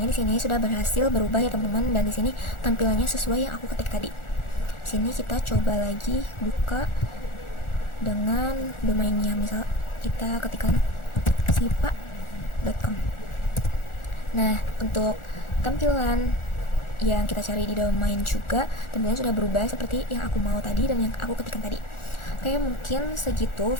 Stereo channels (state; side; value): late; right; 1.4 ms